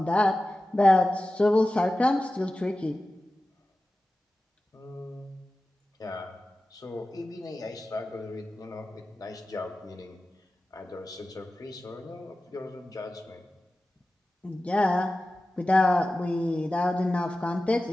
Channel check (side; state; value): both; normal; correlation 0.95